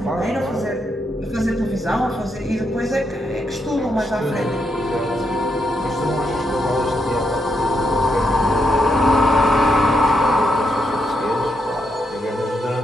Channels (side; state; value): both; normal; correlation 0.80